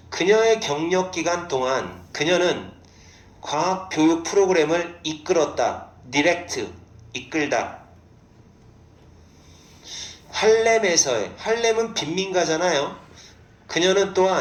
그녀의 경력 기간 동안 그녀는 과학 교육 프로그램을 이끌었다. 디렉트, 이끌다. 할렘은 빈민가잖아요. 그녀는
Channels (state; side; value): identical; both; correlation 1.00